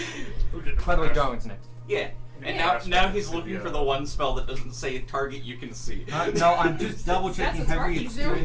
By the way, Darwin's next. Yeah. And Yeah. now he's looking Yeah. for the one spell that doesn't say target you can see. No, I'm just double checking That's what heavy Sparky's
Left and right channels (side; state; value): both; identical; correlation 1.00